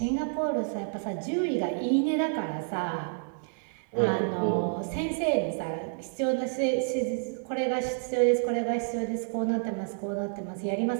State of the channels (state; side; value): silent; left; digital silence